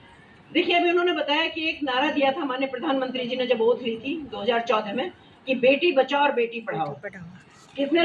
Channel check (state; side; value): identical; both; correlation 1.00